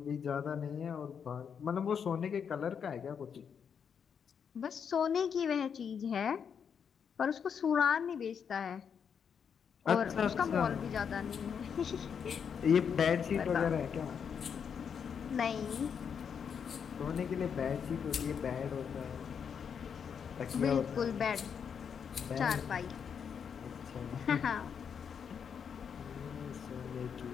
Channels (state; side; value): quieter; right; 7.1 dB